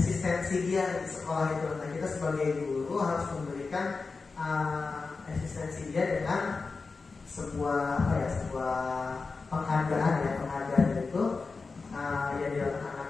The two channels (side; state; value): right; quieter; 4.3 dB